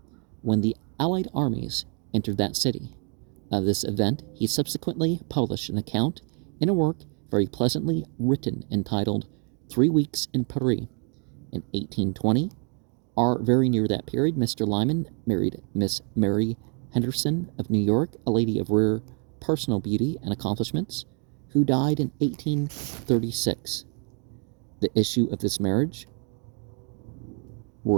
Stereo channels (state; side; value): quieter; left; 39.9 dB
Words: when the Allied armies entered that city. Of this event he subsequently published an account in a work very pleasantly written, entitled 3 Weeks in Paris. In 1820, or very near that period, Mr. Lyman married Miss Mary Henderson of New York, a lady of rare personal beauty and accomplishments, who died in 1836. The issue of this marriage